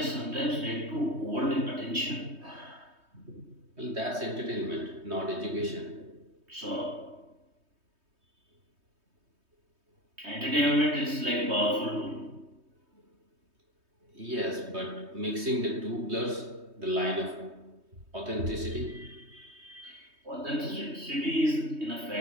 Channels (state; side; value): late; left; 3.2 ms